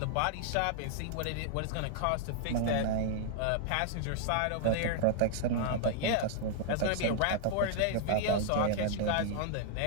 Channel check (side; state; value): both; different; correlation -0.01